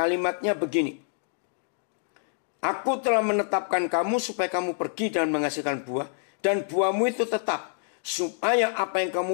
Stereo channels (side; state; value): right; silent; 60 dB below the other